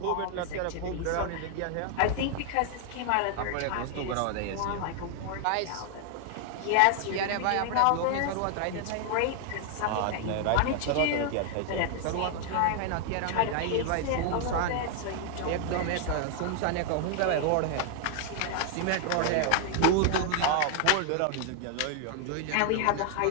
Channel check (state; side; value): different; both; correlation 0.00